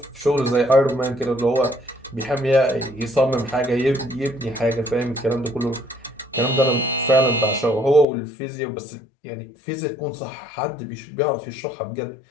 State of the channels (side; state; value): right; drops out; at 8.1 s